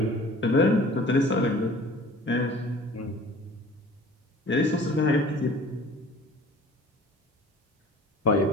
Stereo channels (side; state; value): both; normal; correlation 0.46